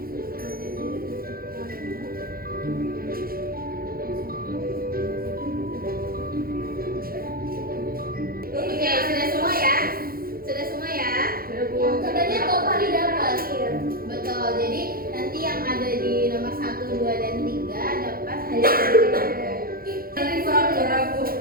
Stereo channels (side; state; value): left; late; 0.43 ms